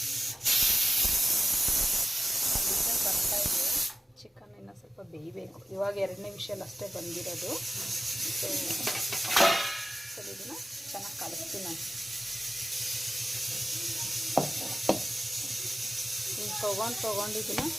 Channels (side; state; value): both; normal; correlation 0.95